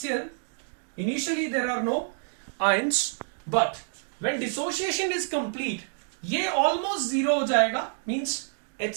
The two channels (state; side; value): silent; left; digital silence